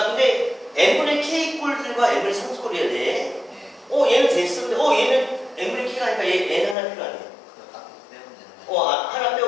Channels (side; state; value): right; drops out; at 6.8 s